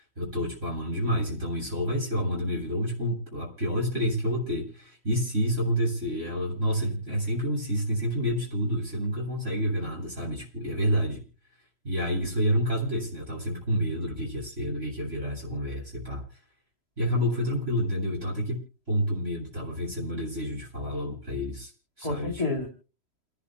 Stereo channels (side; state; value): left; late; 3.1 ms